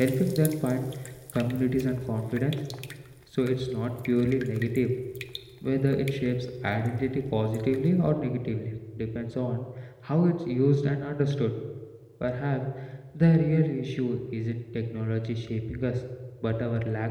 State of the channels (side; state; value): both; identical; correlation 1.00